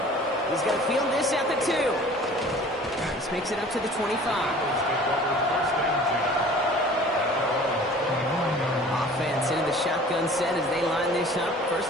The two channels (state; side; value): normal; both; correlation 0.47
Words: He's going to field this at the 2. This makes it up to the 25. Offense into the shotgun set as they line this up.